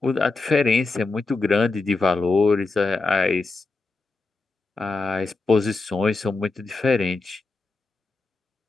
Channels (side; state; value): right; quieter; 3.6 dB